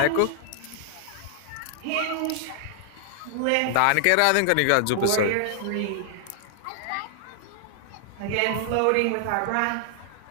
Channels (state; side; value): different; both; correlation 0.00